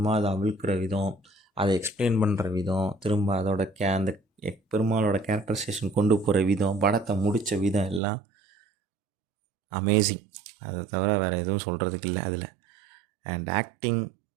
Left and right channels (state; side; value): drops out; left; at 8.0 s